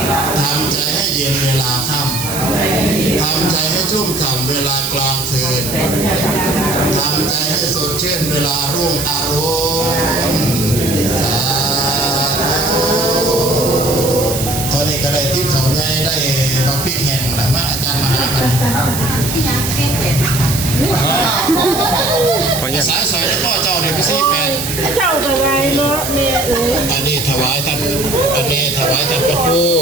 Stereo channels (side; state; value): right; noise; hiss, 6 dB below the sound